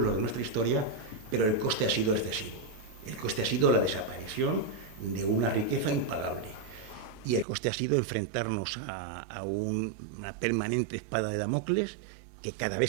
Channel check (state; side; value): drops out; left; at 7.5 s